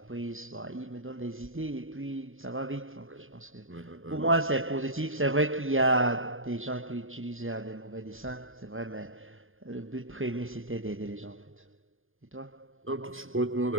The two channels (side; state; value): left; late; 0.59 ms